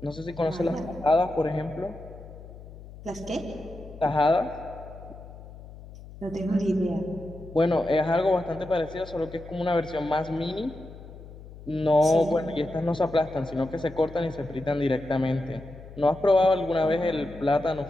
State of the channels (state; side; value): noise; left; hum, 16 dB below the sound